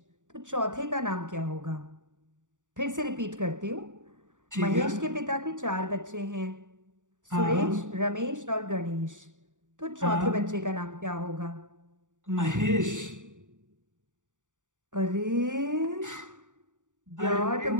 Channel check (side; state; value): left; late; 0.86 ms